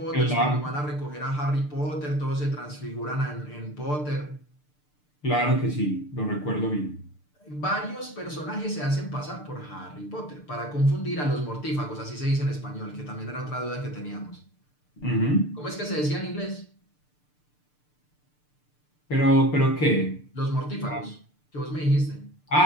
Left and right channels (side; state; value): right; late; 6.7 ms